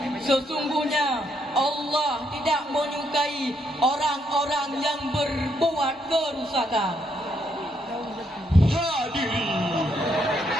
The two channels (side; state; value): both; normal; correlation 0.75